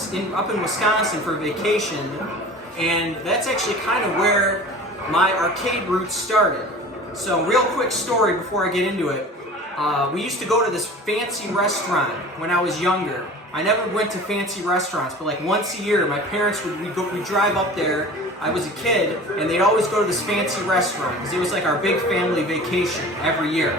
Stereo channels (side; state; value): both; normal; correlation 0.40